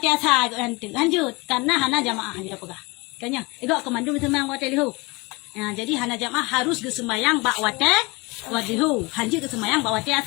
asar hanjut karena hana jamaah hanjut pegah. Kanya, igak kemandu semang wate lihu. Ya, jadi hana jamaah harus ke sembahyang bak wate wadihu. Hanji ke sembahyang bak wate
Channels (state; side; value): quieter; right; 25.5 dB